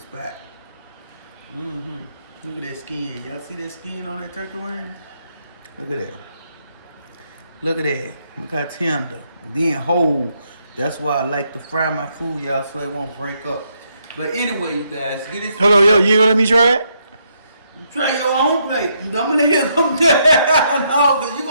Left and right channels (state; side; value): inverted; both; correlation -0.76